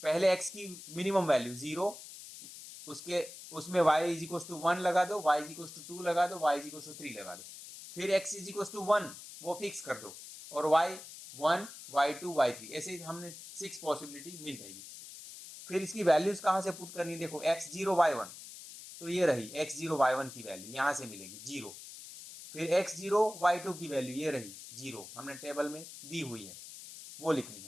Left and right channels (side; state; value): left; noise; hiss, 14 dB below the sound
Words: पहले x की मिनिमम वैल्यू 0, उसमें y इज इक्वल टू 1 लगा दो, y इज इक्वल टू 2 लगा दो, y इज इक्वल टू 3 लगा दो, फिर x इज इक्वल टू 1 वो फिक्स कर दो, और y 1, y 2, y 3, ऐसे हमने 6 पॉसिबिलिटी मिल जाएगी। फिर इसकी वैल्यूज कहाँ से पुट करनी है, देखो x0 y1, तो ये रही x0 y1 की वैल्यू यहाँ से मिलेगी 0, फिर x0 y2 की वैल्यू ये रही 0, हमने टेबल में दी हुई है वो लिखनी